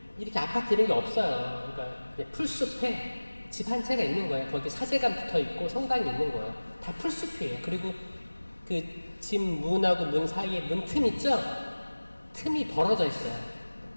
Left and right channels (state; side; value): inverted; both; correlation -1.00